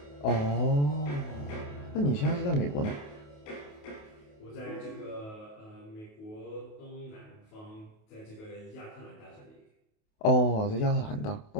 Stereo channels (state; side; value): late; right; 28 ms